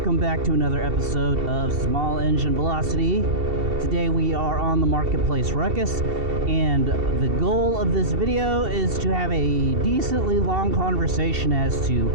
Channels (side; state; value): left; late; 2.7 ms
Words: back to another episode of Small Engine Velocity. Today we are on the Marketplace Ruckus, and the goal of this video is to have a decently long conversation as to